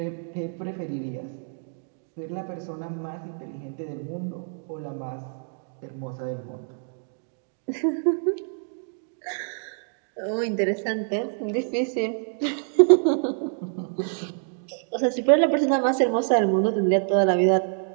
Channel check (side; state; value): left; silent; digital silence